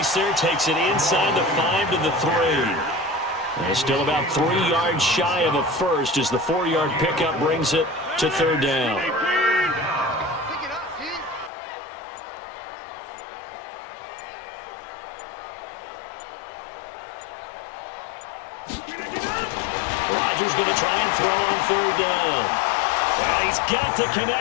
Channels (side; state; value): right; drops out; at 11.5 s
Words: there. Takes it inside the 5 to the 3. And still about 3 yards shy of a first as the 4-yard pickup brings it to 3rd down. Rodgers going to try and throw on third down. And he's got the